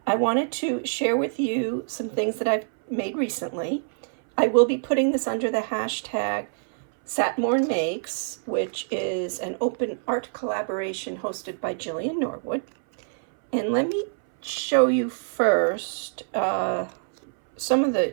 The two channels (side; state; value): left; silent; 61 dB below the other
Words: I wanted to share with you some things that I've made recently. I will be putting this under the hashtag Satmorn Makes, which is an open art collaboration hosted by Jillian Norwood. And let me show you first some of the